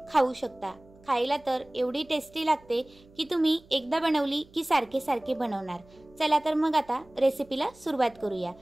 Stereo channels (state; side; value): noise; right; hum, 26 dB below the sound